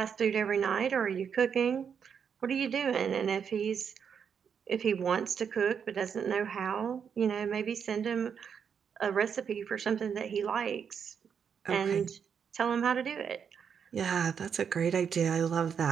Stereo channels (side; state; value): left; quieter; 7.2 dB